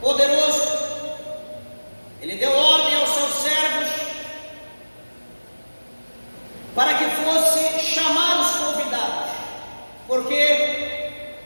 Ele deu ordem aos seus servos para que fosse chamar os convidados, porque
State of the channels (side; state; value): both; inverted; correlation -1.00